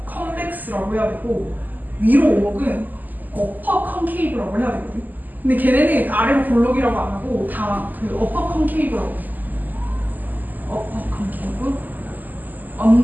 컨벡스라고 해야 되고 위로 오목은 어퍼 컨케이브라고 해야 되거든. 근데 걔네는 아래로 볼록이라고 안 하고 다 그 어퍼 컨케이브라고 해. 어퍼 컨케이브,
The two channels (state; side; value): late; left; 0.084 ms